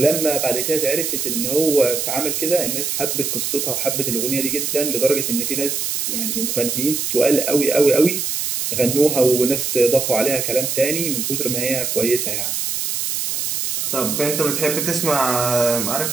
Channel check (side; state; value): right; noise; hiss, 1 dB below the sound